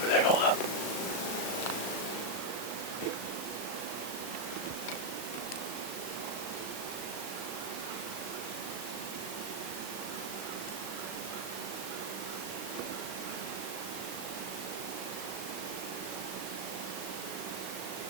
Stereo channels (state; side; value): late; right; 37 ms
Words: there. Hold up.